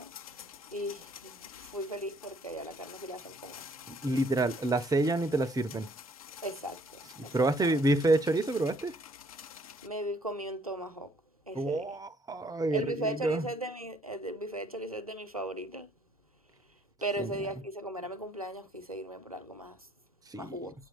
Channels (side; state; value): both; normal; correlation 0.64